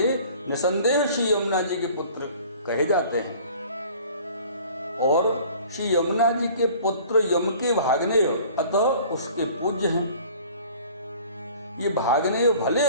निसंदेह श्री यमुना जी के पुत्र कहे जाते हैं और श्री यमुना जी के पुत्र यम के भागनेय अतः उसके पूज्य हैं। ये भागनेय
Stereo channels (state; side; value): inverted; both; correlation -0.49